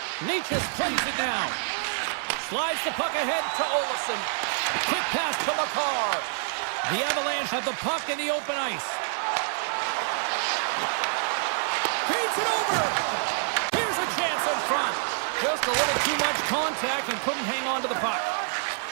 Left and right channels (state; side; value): silent; left; digital silence